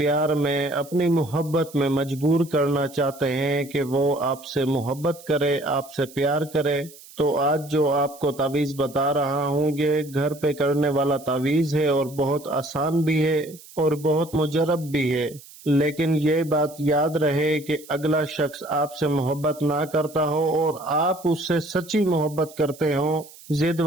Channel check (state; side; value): noise; right; hiss, 20 dB below the sound